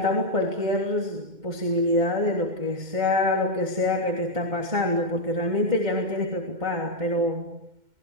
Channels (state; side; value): late; left; 2.1 ms